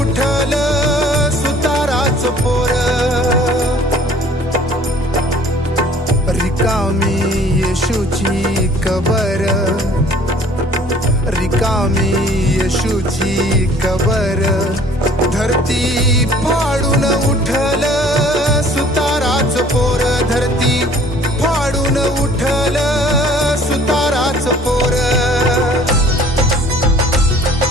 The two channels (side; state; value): both; normal; correlation 0.53